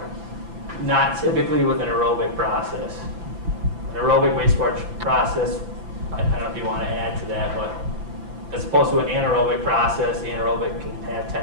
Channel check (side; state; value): left; late; 5.9 ms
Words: Not typically with an aerobic process. An aerobic wastewater process, I don't know if you want to add to that, but as opposed to an anaerobic process, the anaerobic can have